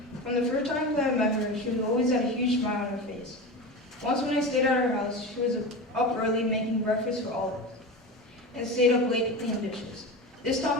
From the first time that I met her, she always had a huge smile on her face. Once when I stayed at her house, she was up early making breakfast for all of us, and stayed up late to clean dishes. This taught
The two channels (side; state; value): both; normal; correlation 0.26